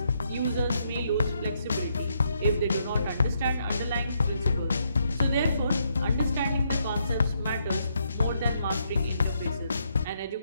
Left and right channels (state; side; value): inverted; both; correlation -0.76